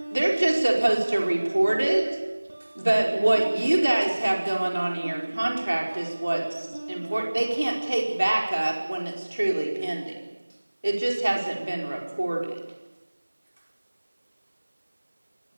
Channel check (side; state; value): both; inverted; correlation -1.00